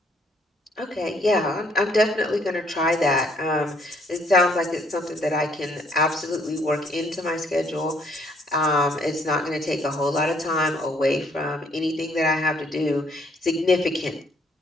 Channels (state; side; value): normal; both; correlation 0.65